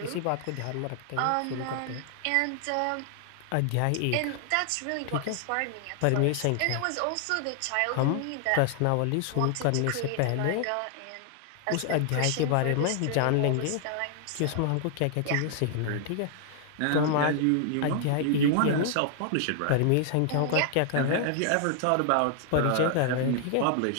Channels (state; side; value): different; both; correlation 0.00